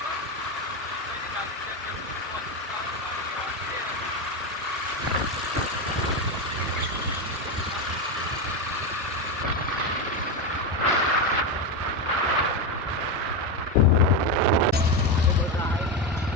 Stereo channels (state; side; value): normal; both; correlation 0.12